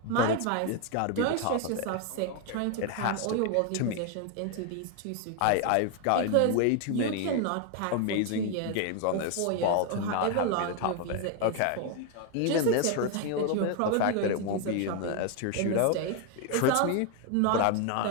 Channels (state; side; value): different; both; correlation 0.01